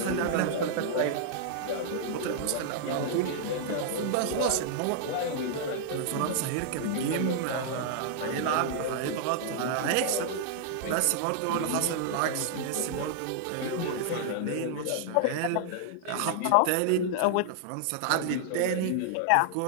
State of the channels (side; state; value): both; different; correlation -0.01